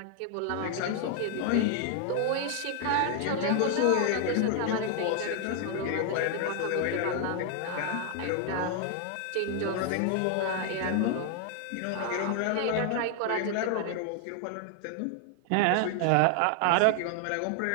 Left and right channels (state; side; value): different; both; correlation 0.00